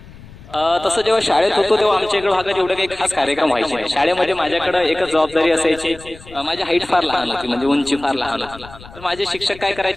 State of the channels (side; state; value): left; noise; rumble, 19 dB below the sound